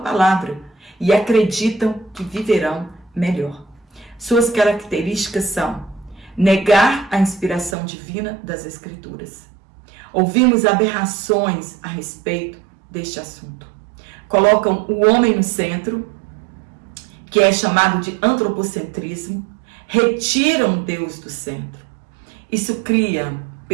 e acreditam que viverão melhor. Suas características são negar a inspiração divina das Escrituras. Ouvimos aberrações a respeito deste assunto. Colocam o homem no centro, que é chamado de antropocentrismo, retiram Deus do centro. Isso cria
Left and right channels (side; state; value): left; drops out; at 7.8 s